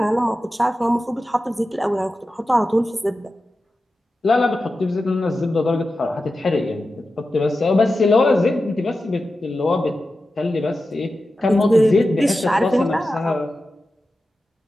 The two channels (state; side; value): normal; both; correlation 0.92